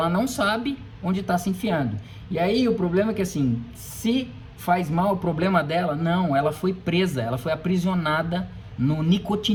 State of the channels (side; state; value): both; identical; correlation 1.00